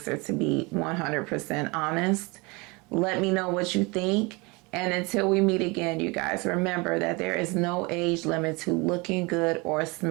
to be 100% honest. Let me know what you think. And until we meet again, you guys, remember that there is no age limit to looking good or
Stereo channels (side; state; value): left; quieter; 26.7 dB